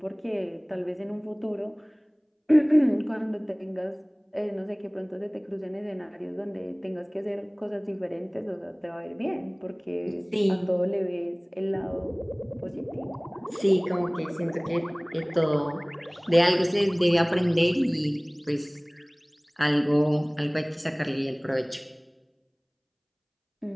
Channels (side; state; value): both; identical; correlation 1.00